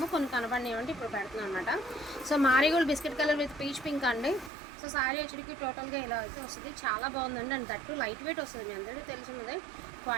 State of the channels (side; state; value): left; drops out; at 4.5 s